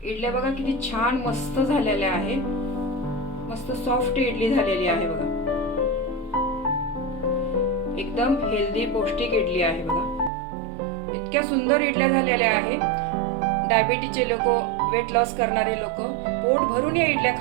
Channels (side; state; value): left; drops out; at 10.3 s